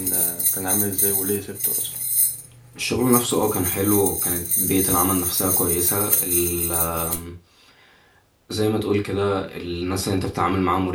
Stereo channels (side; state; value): both; identical; correlation 1.00